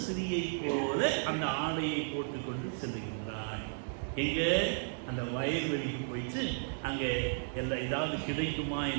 ஸ்திரீயை போல அந்த ஆடையை போட்டுக்கொண்டு செல்லுகின்றாள். எங்க? அந்த வயல்வெளிக்கு போயிட்டு அங்கே எல்லாம் ஏதாவது கிடைக்குமா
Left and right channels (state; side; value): silent; left; digital silence